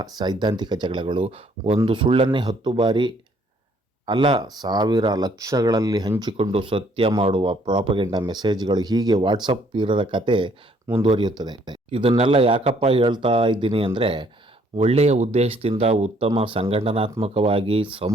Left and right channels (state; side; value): normal; both; correlation 0.64